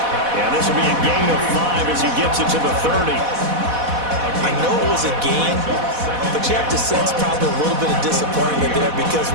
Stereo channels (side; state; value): left; late; 4.1 ms